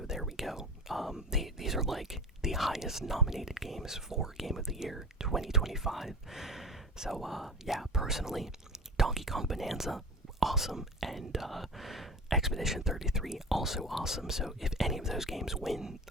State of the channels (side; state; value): both; normal; correlation 0.33